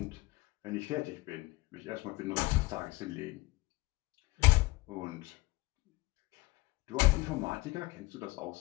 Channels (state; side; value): quieter; right; 21.3 dB